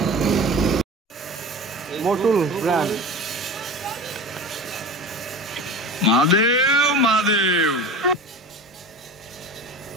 মোটুল ব্র্যান্ড। মহাদেব মহাদেব।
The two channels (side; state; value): both; normal; correlation 0.33